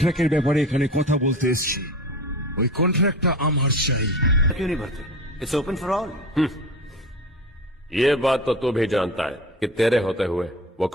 ব্যাপারে এখানে কথা বলতে এসেছি। ওই কন্ট্রাক্টটা আমার চাই। क्यों नहीं भरते? It's open for all. ये बात तो तू भी जानता है कि तेरे होते हुए वो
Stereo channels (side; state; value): both; normal; correlation 0.33